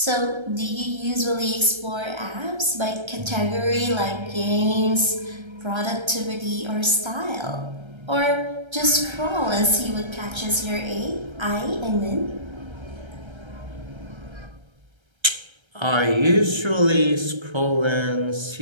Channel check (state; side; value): late; left; 1.3 ms